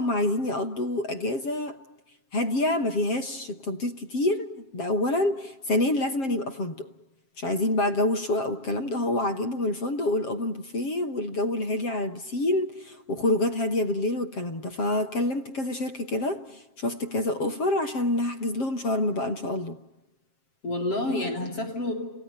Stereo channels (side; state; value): right; late; 7.5 ms